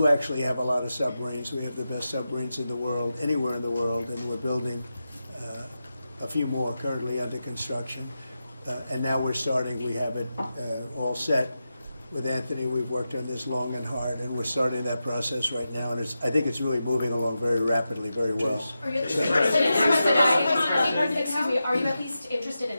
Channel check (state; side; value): inverted; both; correlation -0.91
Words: actually have a lot of submarines. We have the best submarines in the world, anywhere in the world, and we're building a few more currently under construction. And now we're starting, we have it all set. With Anthony, we've worked on this long and hard, and we're starting that process right now, and I think it's really moving along very rapidly, very well. Are you at least interested in